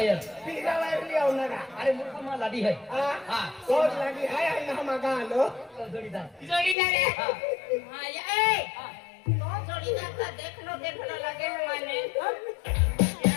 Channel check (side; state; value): right; drops out; at 6.8 s